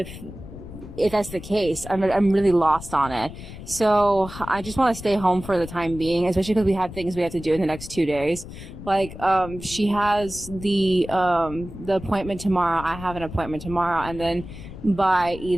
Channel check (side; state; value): left; noise; rumble, 13 dB below the sound